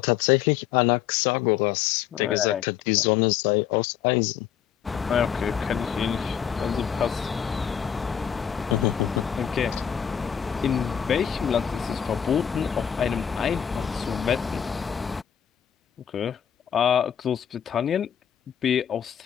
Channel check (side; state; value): right; quieter; 8.9 dB